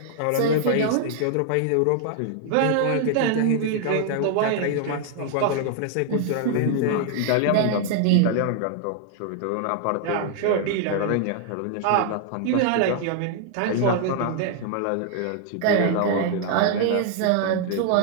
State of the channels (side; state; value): both; different; correlation 0.00